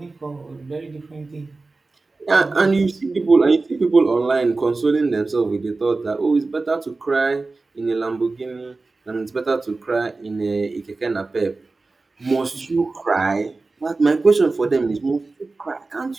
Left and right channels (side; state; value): left; quieter; 3.6 dB